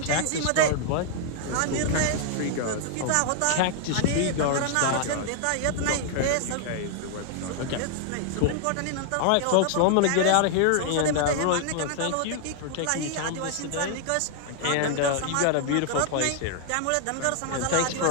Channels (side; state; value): both; different; correlation 0.00